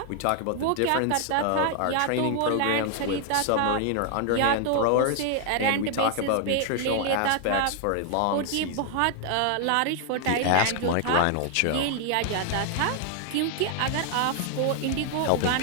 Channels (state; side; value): different; both; correlation 0.00